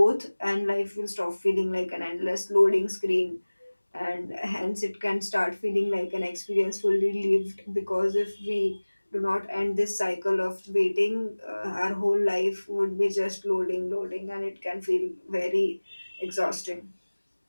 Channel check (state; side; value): inverted; both; correlation -1.00